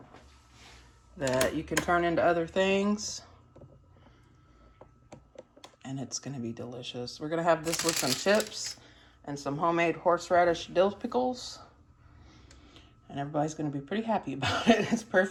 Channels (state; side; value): identical; both; correlation 1.00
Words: that you can turn into other things. And it's gonna be delicious. We're gonna have this with some chips and some homemade horseradish dill pickles. And everybody's gonna be pretty happy about it. It's